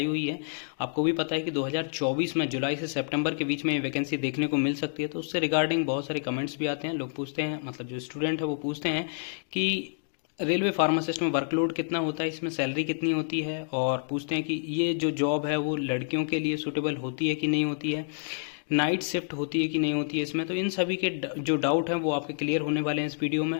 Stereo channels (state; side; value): silent; right; digital silence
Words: हुई है। आपको भी पता है कि 2024 में जुलाई से सितंबर के बीच में ये वैकेंसी देखने को मिल सकती है। तो उससे रिगार्डिंग बहुत सारे कमेंट्स भी आते हैं। लोग पूछते हैं, मतलब जो स्टूडेंट है वो पूछते हैं कि रेलवे फार्मासिस्ट में वर्कलोड कितना होता है, इसमें सैलरी कितनी होती है, और पूछते हैं कि ये जो जॉब है वो लड़कियों के लिए सूटेबल होती है कि नहीं होती है, नाइट शिफ्ट होती है कि नहीं होती है इसमें। तो इन सभी के जो डाउट हैं वो आपके क्लियर होने वाले हैं इस वीडियो